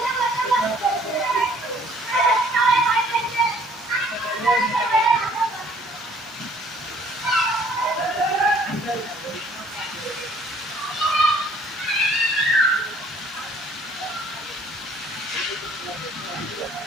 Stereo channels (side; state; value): both; normal; correlation 0.58